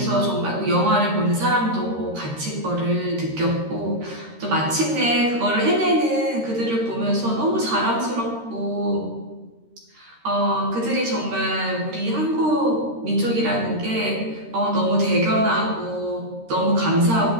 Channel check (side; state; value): left; late; 13 ms